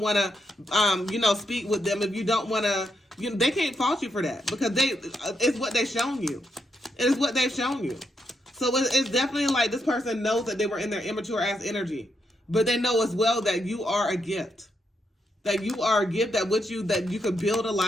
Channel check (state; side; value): normal; both; correlation 0.80